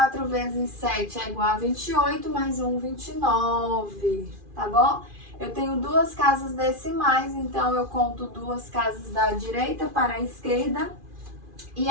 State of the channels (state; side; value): late; left; 2.4 ms